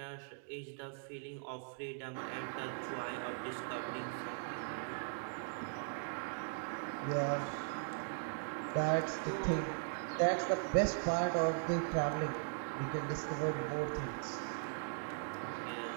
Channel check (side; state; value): left; silent; digital silence